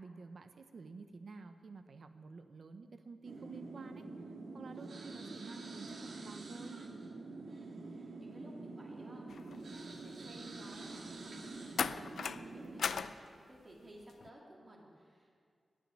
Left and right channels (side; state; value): both; normal; correlation 0.84